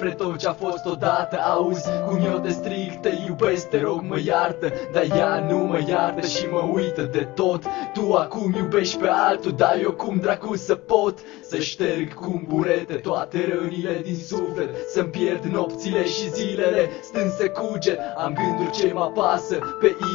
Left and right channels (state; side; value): quieter; right; 19.7 dB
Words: tot ce-a fost odată. Auzi cum eu te strig, te iubesc, te rog mă iartă. Dar ea nu mă iartă și mă uită de tot. Tu acum iubești pe altul, dar eu cum dracu să pot să șterg cu burete toate rănile din suflet. Să-mi pierd nopțile și zilele stând să cuget. Am gânduri ce mă apasă pe